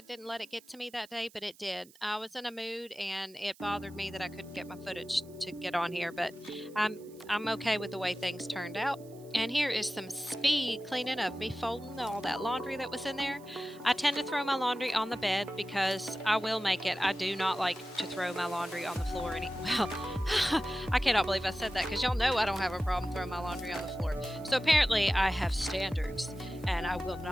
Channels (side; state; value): right; noise; hiss, 25 dB below the sound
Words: didn't let it get to me that day, but it did. I was in a mood, and it bothered me that I couldn't get my footage to get on here, but I'm okay with the way things turned out. And here is some speed cleaning of me folding all that laundry that was in there. I tend to throw my laundry on the bed because I will make it. I do not like to throw my laundry on the floor. Well, I cannot believe I said that because y'all know I don't have a problem throwing my laundry on the floor. So apparently I have standards and I will